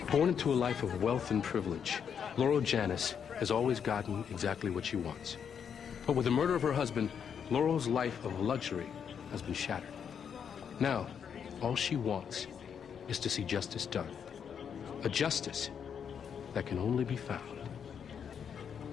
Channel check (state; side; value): quieter; right; 7.5 dB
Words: Born into a life of wealth and privilege, Laurel Janis has always gotten exactly what she wants. But with the murder of her husband, Laurel's life of luxury has been shattered. Now, all she wants is to see justice done. A justice that can only be found